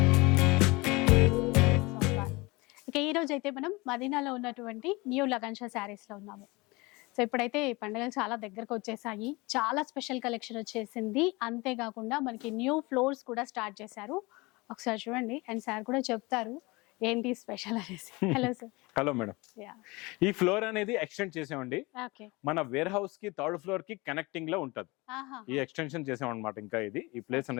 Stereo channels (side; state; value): right; quieter; 24.3 dB